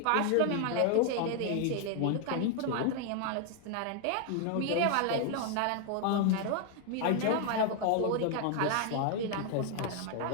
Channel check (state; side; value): different; both; correlation 0.00